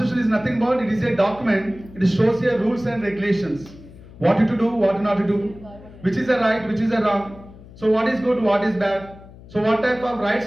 is nothing but it is a document. It shows your rules and regulations. What you to do, what not to do, which is a right, which is a wrong. So what is good, what is bad. So what type of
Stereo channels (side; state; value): left; noise; hum, 20 dB below the sound